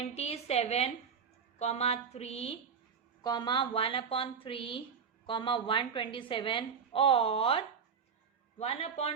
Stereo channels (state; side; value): quieter; left; 6.3 dB